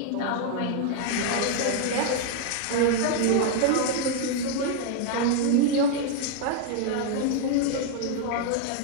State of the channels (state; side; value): different; both; correlation 0.00